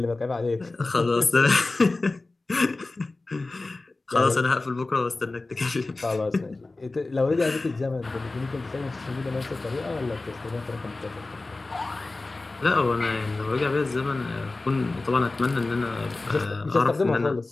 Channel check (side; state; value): right; quieter; 3.3 dB